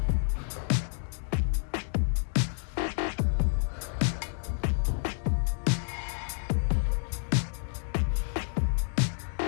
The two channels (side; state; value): right; silent; digital silence